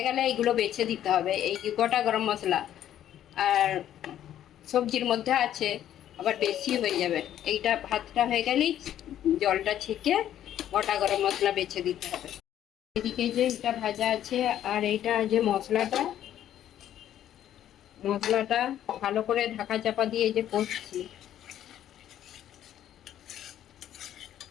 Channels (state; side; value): quieter; right; 11.3 dB